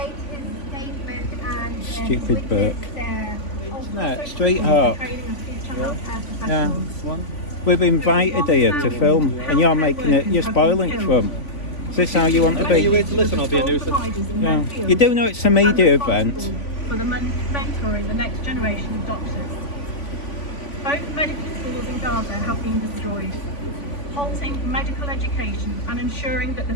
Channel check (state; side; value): late; right; 3.5 ms